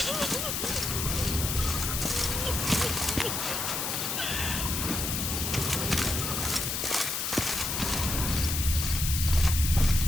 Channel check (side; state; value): left; noise; hiss, 1 dB below the sound